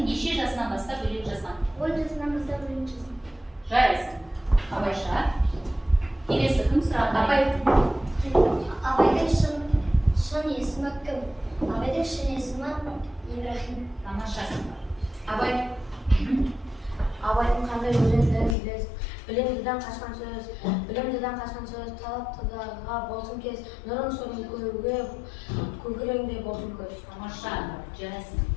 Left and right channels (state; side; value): drops out; right; at 18.6 s